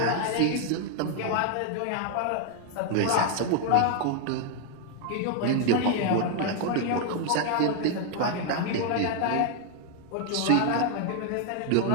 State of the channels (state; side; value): different; both; correlation 0.00